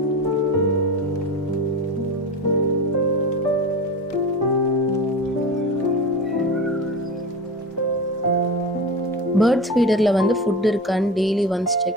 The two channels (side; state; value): both; normal; correlation 0.28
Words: பேர்ட்ஸ் ஃபீடரில் வந்து ஃபுட் இருக்கான்னு டெய்லி ஒன்ஸ்